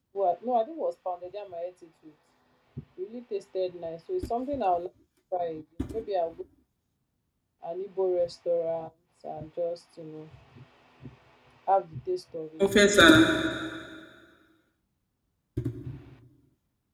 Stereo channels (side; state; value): both; identical; correlation 1.00